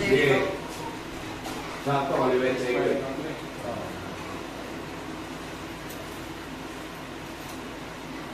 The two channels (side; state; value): both; identical; correlation 1.00